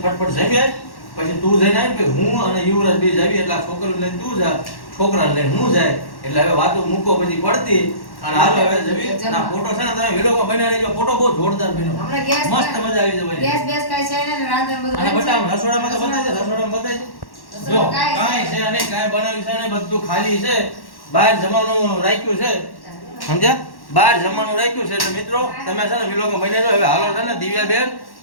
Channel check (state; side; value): late; right; 1.1 ms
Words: ફટફટ જમી આય. પછી તું જઈને આવી કે હું અને યુવરાજ બે જાવી. એટલે આ છોકરાને લઈને તું જા, છોકરાને લઈને હું જાય. એટલે હવે વાતો મૂકો બધી પડતી અને હાલો હવે જમી. અને આ ફોટો છે ને તમે વિલોગમાં બનાવી લેજો. ફોટો બહુ જોરદાર બન્યો. હમણાં ગેસ મસ્ત મજા આવી જવાની. ગેસ બેસ કાઈ છે ને રાંધણ બધું અને બંધ છે? બટા રસોડામાં તો બતાવી દે. રસોડામાં બતાવી દે. જો કાંઈ છે નહીં, કાંઈ બનાવ્યું છે નહીં, બધું ખાલી છે. બહાર જમવાનું રાખ્યું છે સમજ્યા. બહાર જમવાનું રાખ્યું છે. એટલે મિત્રો તમે છે ને વિલોગમાં બની જાઓ. હવે હાલો છે ને દિવ્યાબેન